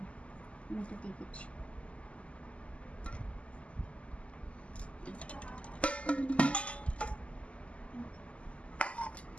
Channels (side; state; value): right; late; 0.060 ms